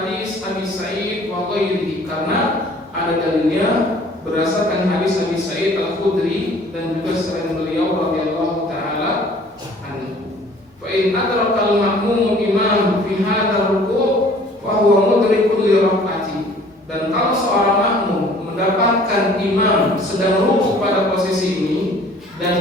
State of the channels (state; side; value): normal; both; correlation 0.53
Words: Abi Sa'id wa ghairihi, karena ada dalilnya berdasarkan hadis Abi Sa'id Al-Khudri dan juga selain beliau radhiyallahu taala anhu. Fa in adraka al-ma'mum imam fi hadzal ruku' fa huwa mudrikun li rakaati, dan kalau seorang makmum mendapatkan imam sedang ruku pada posisi ini dan